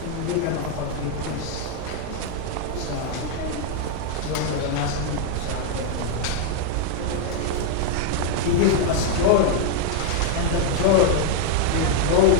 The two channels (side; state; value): both; different; correlation 0.00